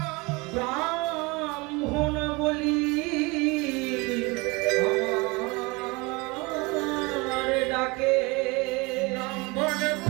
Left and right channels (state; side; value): quieter; left; 26.0 dB